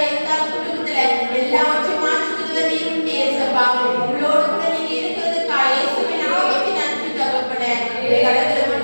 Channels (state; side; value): inverted; both; correlation -1.00